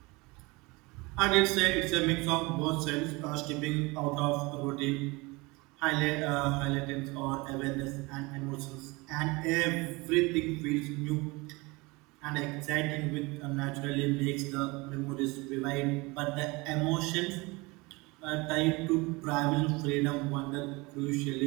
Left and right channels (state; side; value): quieter; left; 24.7 dB